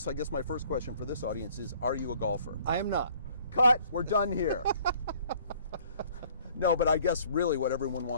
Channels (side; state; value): both; inverted; correlation -0.57